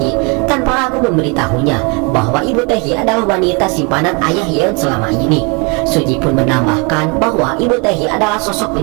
tanpa ragu memberitahunya bahwa ibu Taehi adalah wanita simpanan ayah Yeon selama ini. Suji pun menambahkan bahwa ibu Taehi adalah sosok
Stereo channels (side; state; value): left; quieter; 31.7 dB